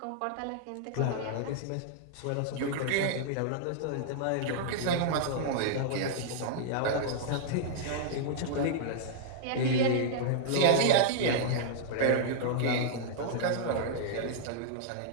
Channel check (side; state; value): both; different; correlation -0.02